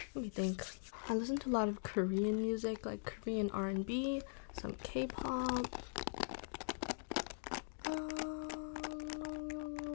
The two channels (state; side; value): silent; right; digital silence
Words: Let me think. I listen to a lot of Korean music, like Korean R&B, some K-pop.